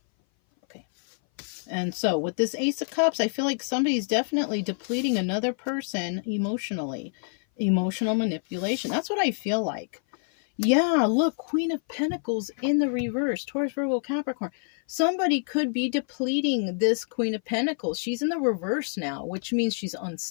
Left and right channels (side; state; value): right; silent; 57 dB below the other